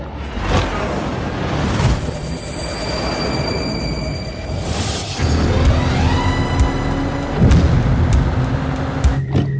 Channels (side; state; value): both; identical; correlation 1.00